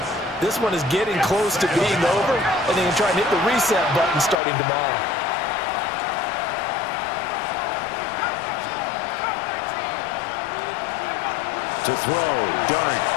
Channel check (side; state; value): right; drops out; at 4.4 s